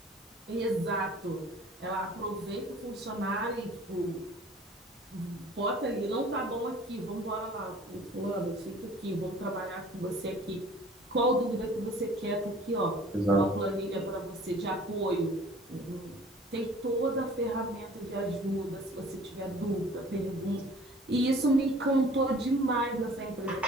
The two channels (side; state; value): both; normal; correlation 0.49